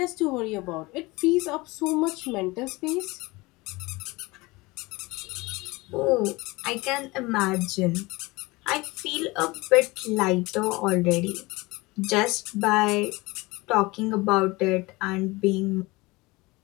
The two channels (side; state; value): right; quieter; 22.9 dB